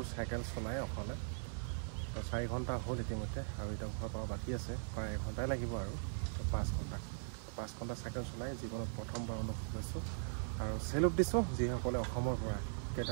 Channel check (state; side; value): silent; left; digital silence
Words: চাইকেল চলাই অকলে তো 4 ঘণ্টা হ'ল ইতিমধ্যে আৰু এতিয়া ঘৰ পৰা বাকী আছে প্ৰায় 1 ঘণ্টাই লাগিব আৰু 5 ঘণ্টা চাইকেল চলাই জীৱনত প্ৰথমবাৰ অনুভৱ লৈছোঁ আৰু চেলুট দিছোঁ যিসকলে অসমৰ পৰা